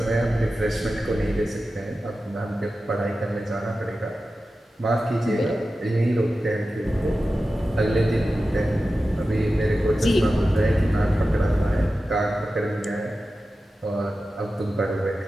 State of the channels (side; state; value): both; normal; correlation 0.93